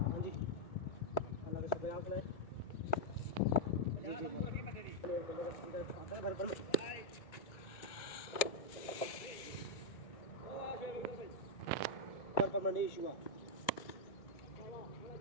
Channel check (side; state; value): right; late; 1.9 ms